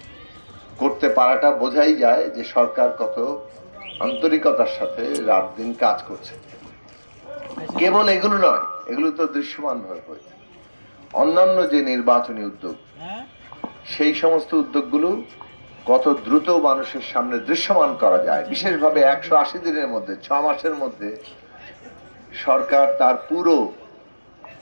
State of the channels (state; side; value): inverted; both; correlation -1.00